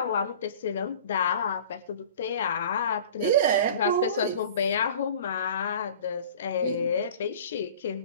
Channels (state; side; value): inverted; both; correlation -0.42